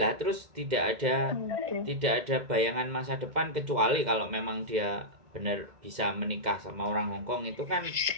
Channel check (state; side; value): late; left; 2.1 ms